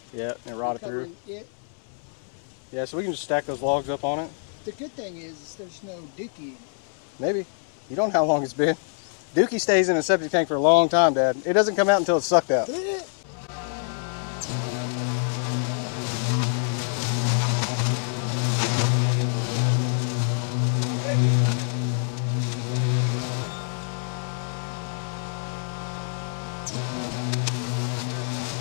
Yeah, it rotted through. It. Yeah, so we can just stack those logs up on it. The good thing is there's no dookie. Maybe. You don't know how long it's been. Dookie stays in a septic tank for a long time, Dad. It doesn't come out until it's sucked out.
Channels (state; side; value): silent; right; digital silence